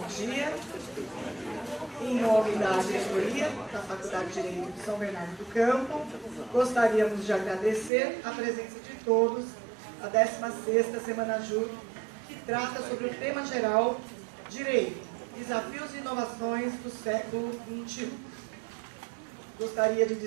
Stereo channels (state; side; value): drops out; left; at 7.9 s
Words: dia. Em nome da diretoria da Faculdade de Direito de São Bernardo do Campo, gostaríamos de agradecer a presença de todos à 16ª Semana Júri, que trata sobre o tema geral Direito, Desafios e Inovações do século XXI. Gostaria de